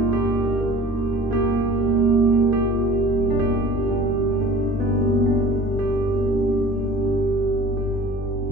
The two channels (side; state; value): both; normal; correlation 0.43